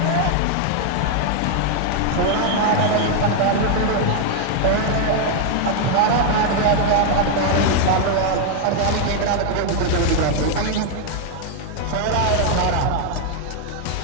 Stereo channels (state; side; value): different; both; correlation 0.00